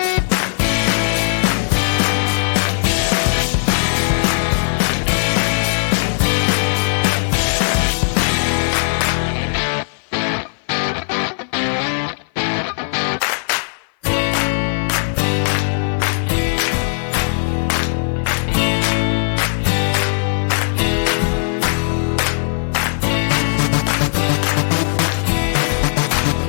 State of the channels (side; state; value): right; silent; 58 dB below the other